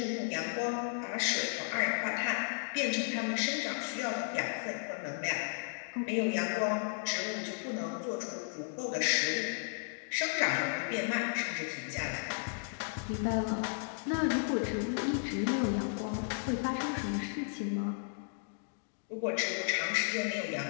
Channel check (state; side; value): silent; right; digital silence